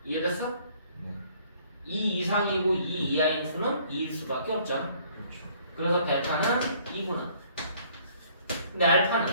이해됐어? 네. 2 이상이고 2 이하인 수는 2일 수밖에 없잖아. 그렇죠. 그래서 베타는 2구나. 근데 알파는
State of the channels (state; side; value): inverted; both; correlation -0.60